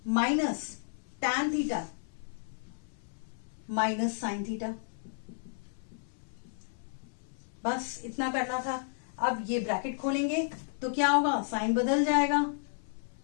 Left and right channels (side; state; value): right; silent; 56 dB below the other